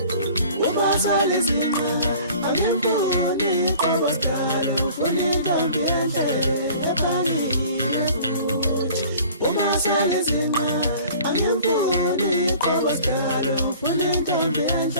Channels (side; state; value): both; inverted; correlation -0.48